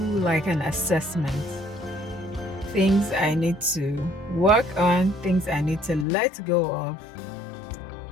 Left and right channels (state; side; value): drops out; right; at 6.1 s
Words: like an assessment. Things I need to work on, things I need to let go of,